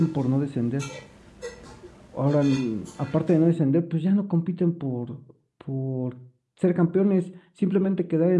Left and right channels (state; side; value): identical; both; correlation 1.00